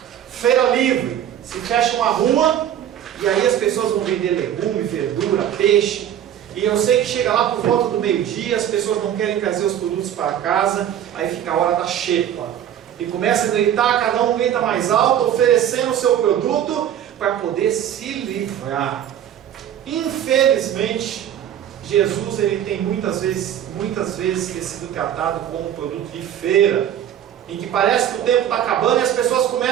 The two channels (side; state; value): left; quieter; 10.3 dB